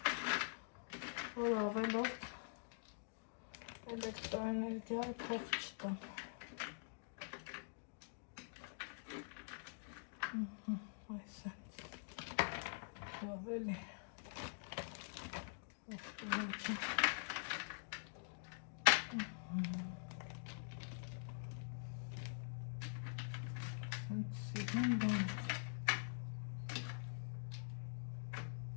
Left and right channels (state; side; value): silent; right; digital silence